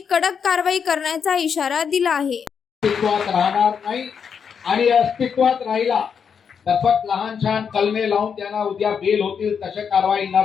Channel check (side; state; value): right; quieter; 6.8 dB